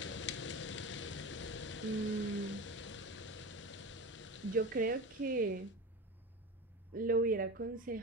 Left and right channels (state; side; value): normal; both; correlation 0.26